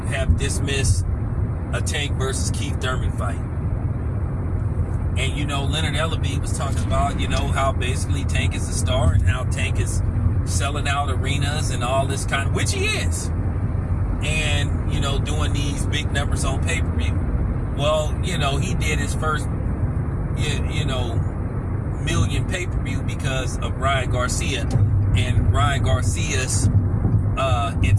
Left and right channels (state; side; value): identical; both; correlation 1.00